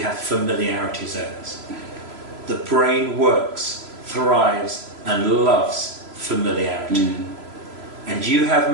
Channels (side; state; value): left; late; 3.0 ms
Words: familiarity zones. The brain works, thrives, and loves familiarity. And you have